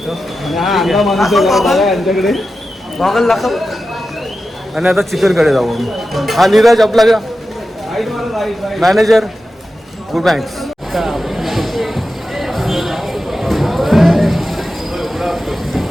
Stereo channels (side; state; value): both; normal; correlation 0.92